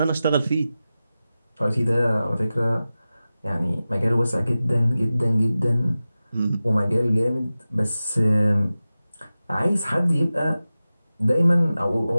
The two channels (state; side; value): inverted; both; correlation -0.95